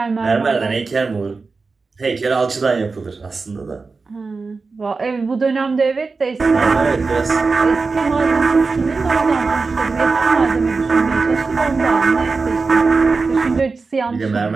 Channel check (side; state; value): left; quieter; 4.2 dB